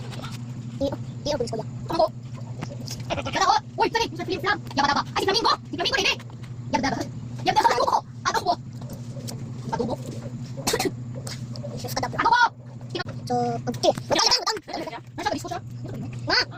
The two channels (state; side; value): identical; both; correlation 1.00